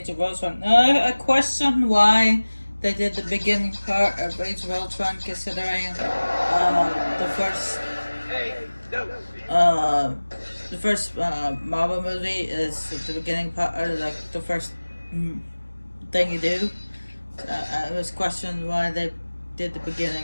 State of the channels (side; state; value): both; inverted; correlation -1.00